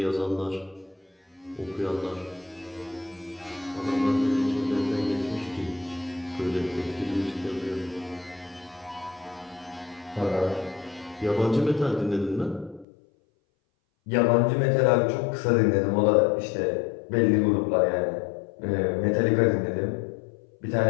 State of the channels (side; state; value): right; drops out; at 12.9 s